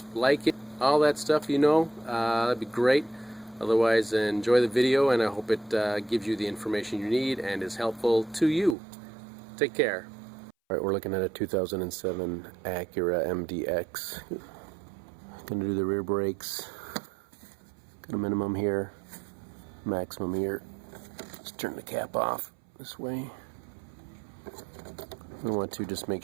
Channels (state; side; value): drops out; left; at 8.8 s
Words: like it, all that stuff, that'd be great. Otherwise, enjoy the video, and I hope it gives you the information you need and is helpful to you. Take care. Alright, we're looking at a 2007 Acura RDX. Gonna do the rear brakes. Got a minimum here, maximum here. Let's turn the cap off this way. We want to just make